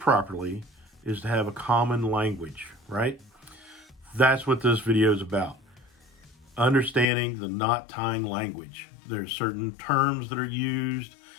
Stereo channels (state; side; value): drops out; right; at 7.1 s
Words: properly is to have a common language, right? That's what this video is about. Understanding the knot tying language. There's certain terms that are used